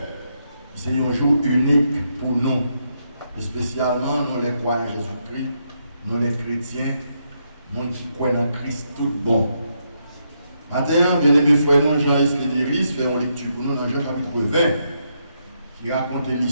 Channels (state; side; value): inverted; both; correlation -0.79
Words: C'est un jour unique pour nous, et spécialement nous les croyants en Jésus-Christ, nous les chrétiens, nous qui croyons en Christ tout bon. Maintenant, bien aimés frères, nous, Jean-Yves Lédiris, fait une lecture pour nous dans Jean chapitre 20, qui raconte